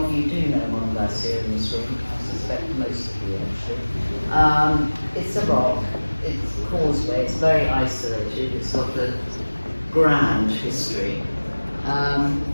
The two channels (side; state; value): both; inverted; correlation -1.00